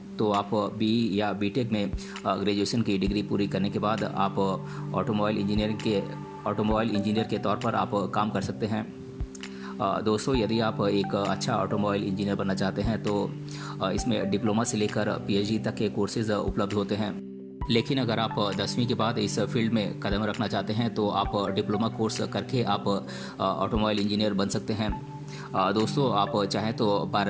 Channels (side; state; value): both; identical; correlation 1.00